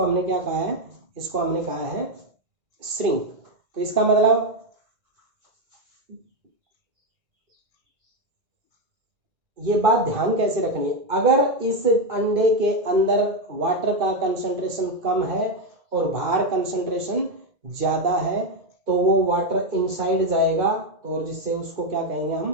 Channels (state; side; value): late; left; 2.1 ms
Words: हमने क्या कहा है, इसको हमने कहा है श्रिंक। तो इसका मतलब ये बात ध्यान कैसे रखनी है, अगर इस अंडे के अंदर वाटर का कंसंट्रेशन कम है और बाहर कंसंट्रेशन ज्यादा है, तो वो वाटर इनसाइड जाएगा, और जिससे उसको क्या कहेंगे